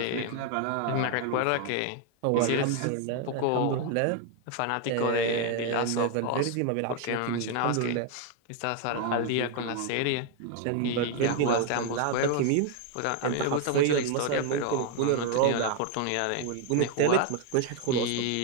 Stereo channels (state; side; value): different; both; correlation 0.01